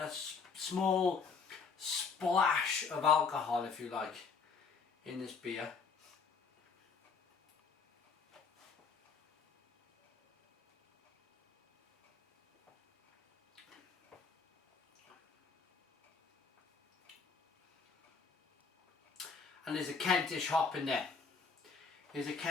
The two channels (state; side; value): quieter; right; 5.3 dB